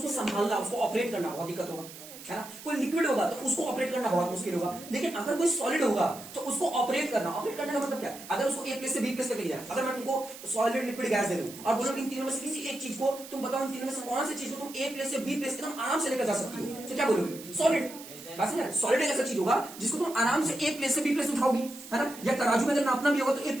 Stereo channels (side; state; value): right; noise; hiss, 15 dB below the sound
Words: संभालना, उसको ऑपरेट करना बहुत दिक्कत होगा, है ना। कोई लिक्विड होगा तो उसको ऑपरेट करना बहुत मुश्किल होगा, लेकिन अगर कोई सॉलिड होगा तो उसको ऑपरेट करना का मतलब क्या है, अगर उसको ए प्लेस से बी प्लेस तक ले जाए, अगर मैं तुमको सॉलिड लिक्विड गैस दे दूं और बोलो इन तीनों में से किसी एक चीज को तुम बताओ, इन तीनों में से कौन सी चीज को तुम ए प्लेस से बी प्लेस एकदम आराम से लेकर जा सकती हो, तो क्या बोलोगे? सॉलिड। बस सॉलिड एक ऐसा चीज होगा जिसको तुम आराम से ए प्लेस से बी प्लेस उठाओगी, है ना। या तराजू में अगर नापना भी होगा तो ए